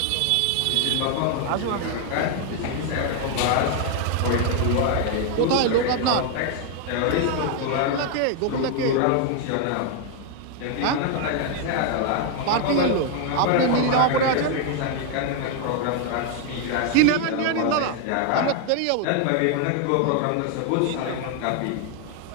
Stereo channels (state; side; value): different; both; correlation 0.01